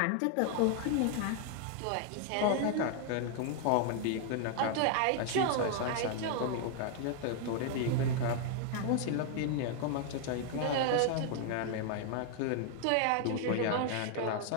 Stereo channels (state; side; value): different; both; correlation 0.00